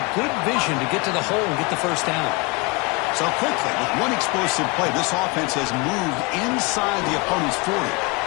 good vision to get to the hole and get the first down. So quickly, with one explosive play, this offense has moved inside the opponent's 40.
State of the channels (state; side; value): quieter; right; 27.7 dB